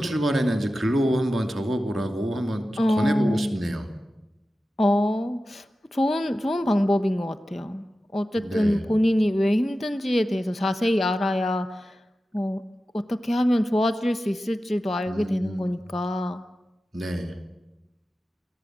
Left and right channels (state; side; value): normal; both; correlation 0.94